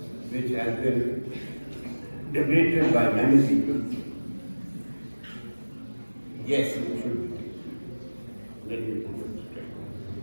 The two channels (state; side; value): inverted; both; correlation -1.00